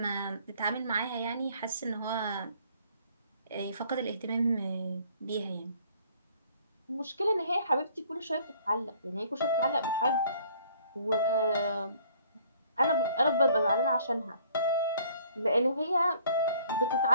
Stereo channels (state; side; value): inverted; both; correlation -0.59